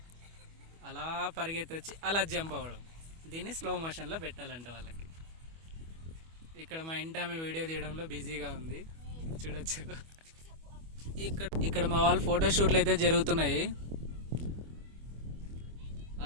అలా పరిగెత్తి వచ్చి అలా జంప్ అవ్వడం, దీన్ని స్లో మోషన్లో పెట్టాలంట వాళ్ళకి. ఇక్కడ మా ఇంటి ఆమె వీడియో తీయడంలో బిజీగా ఉంది, చూడొచ్చు. ఇక్కడ మా వాళ్ళు ఫోటోషూట్లు అయితే జరుగుతున్నాయి.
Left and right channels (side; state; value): left; late; 25 ms